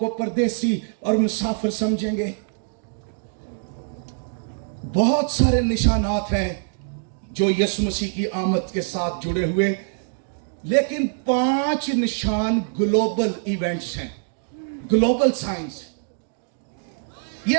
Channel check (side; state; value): left; silent; digital silence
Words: परदेसी और मुसाफिर समझेंगे। बहुत सारे निशानात हैं जो यीशु मसीह की आमद के साथ जुड़े हुए, लेकिन 5 निशान ग्लोबल इवेंट्स हैं, ग्लोबल साइंस।